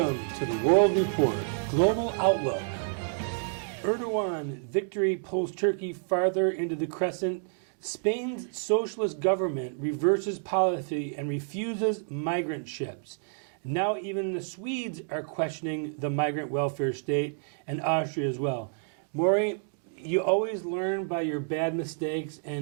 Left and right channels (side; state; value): left; silent; digital silence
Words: to the World Report, Global Outlook. Erdogan victory pulls Turkey farther into the crescent. Spain's socialist government reverses policy and refuses migrant ships. Now even the Swedes are questioning the migrant welfare state, and Austria as well. Maury, you always learn by your bad mistakes,